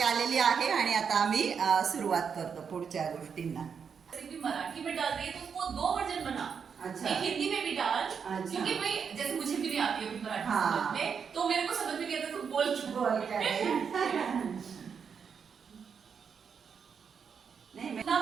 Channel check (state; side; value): quieter; left; 6.6 dB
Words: आलेली आहे आणि आता आम्ही सुरुवात करतो पुढच्या गोष्टींना. रेसिपी मराठी में डाल रही है तो उसको 2 वर्जन बना. अच्छा. एक हिंदी में भी डाल. अच्छा. क्योंकि भाई जैसे मुझे भी नहीं आती है मराठी हाँ. समझ में, तो मेरे को समझ में नहीं आता, तुम बोल नहीं मैं ना